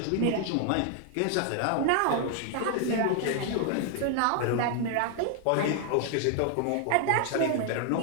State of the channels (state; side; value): different; both; correlation 0.00